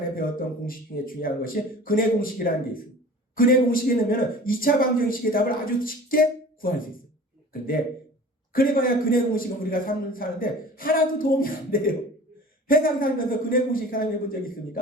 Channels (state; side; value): normal; both; correlation 0.42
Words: 배웠던 공식 중에 중요한 것이 근해 공식이라는 게 있어요. 근해 공식에 넣으면 2차 방정식의 답을 아주 쉽게 구할 수 있어요. 그런데 그래봐야 근해 공식은 우리가 사는데 하나도 도움이 안 돼요. 세상 살면서 근해 공식 사용해 본 적